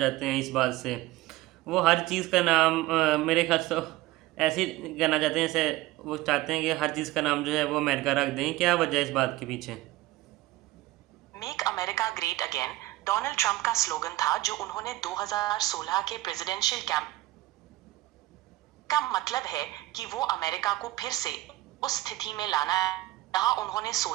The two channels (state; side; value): quieter; left; 17.8 dB